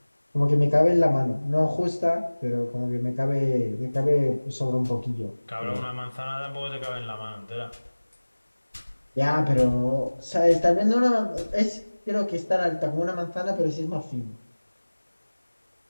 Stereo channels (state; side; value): inverted; both; correlation -1.00